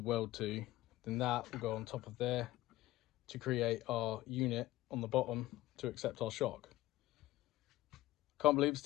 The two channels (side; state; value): right; quieter; 16.5 dB